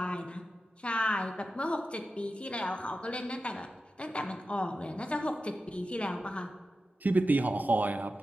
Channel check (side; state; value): both; normal; correlation 0.92